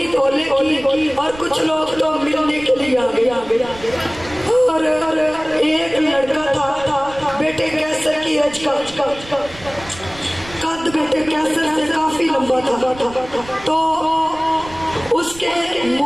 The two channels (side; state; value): right; noise; rumble, 18 dB below the sound